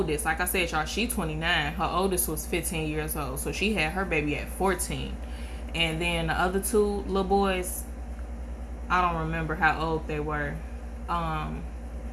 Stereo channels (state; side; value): identical; both; correlation 1.00